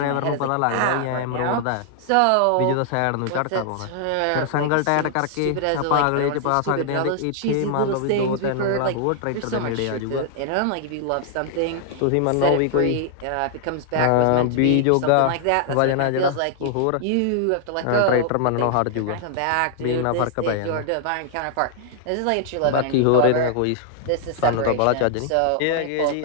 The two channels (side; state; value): both; different; correlation -0.01